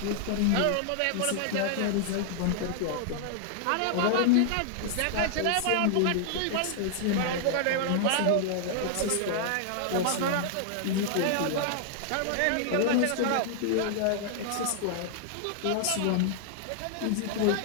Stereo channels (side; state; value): both; different; correlation -0.01